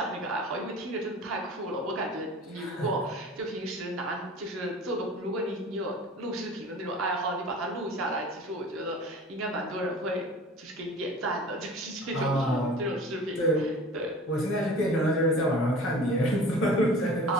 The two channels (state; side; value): normal; both; correlation 0.41